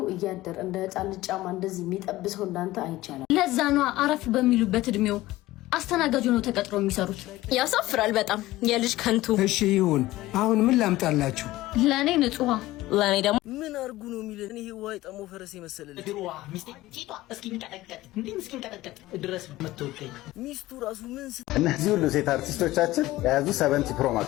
እያደር እንደ ህፃን ጫማ እንደዚህ የሚጠብሰው እንዳንተ አይቻልም። ለዛ ነው አረፍ በሚሉበት እድሜው አስተናጋጅ ነው ተቀጥሮ የሚሰሩት። ያሳፍራል በጣም የልጅ ከንቱ። እሺ ይሁን። አሁን ምን ላምጣላችሁ? ለኔ ንጹህ ለኔ ደግሞ ምን አርጉ ነው የሚለን? ይሄ ዋይ ጠሞ ፈረስ የመሰለልኝ ድሮዋ ሚስቴ ቲቷ እስኪንቀጠቀጥ እንዴም እስኪንቀጠቀጥ ድረስ መተወቀኝ ሚስቱ ራሱ ምን እነዚህ ሁሉ ሴት አርቲስቶቻችን የያዙ 70 ፕሮ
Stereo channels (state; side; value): quieter; right; 17.1 dB